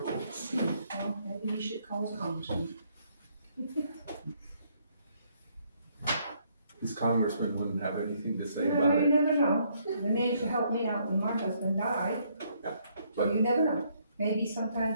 Well, maybe you should call the congressman. This congressman wouldn't have anything to say You about it. never know. The man used to help me out when my husband died. So But- you never know. Maybe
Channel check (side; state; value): both; inverted; correlation -0.70